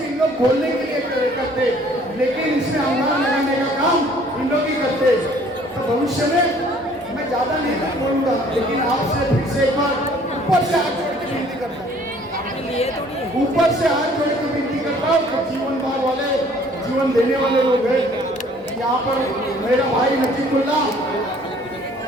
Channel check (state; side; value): normal; both; correlation 0.56